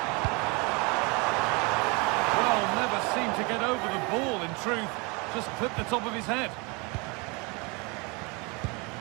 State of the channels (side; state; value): left; quieter; 29.0 dB